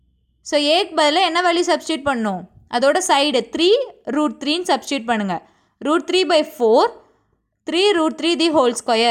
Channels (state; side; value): identical; both; correlation 1.00